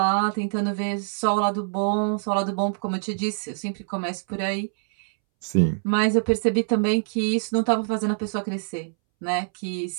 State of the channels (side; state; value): left; silent; 62 dB below the other